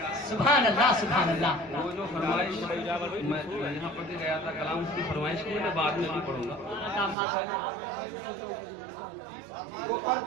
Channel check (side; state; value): left; drops out; at 7.2 s